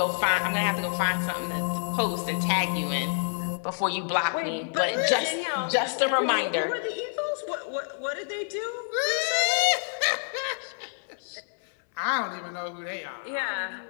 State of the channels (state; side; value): silent; right; 60 dB below the other